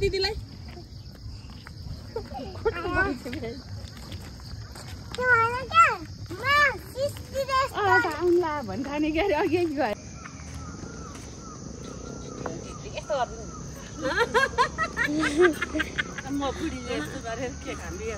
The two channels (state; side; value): identical; both; correlation 1.00